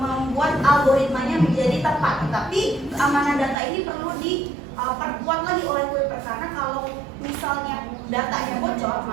algoritmanya menjadi tepat. Tetapi keamanan data ini perlu diperkuat lagi oleh Kuiper, karena kalau misalnya datanya bocor,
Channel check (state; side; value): drops out; left; at 3.6 s